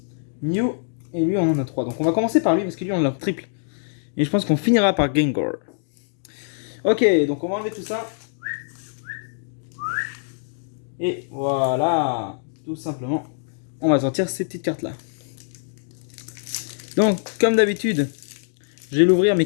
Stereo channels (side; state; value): right; silent; digital silence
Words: Mew. Et lui, on en a 3. Donc on va commencer par lui parce que lui, on l'a triple. Et je pense qu'on finira par Gengar. Ok, donc on va enlever tout ça. Et voilà. Tout simplement, on va sortir ces petites cartes là. Donc, comme d'habitude, je vais l'ouvrir mais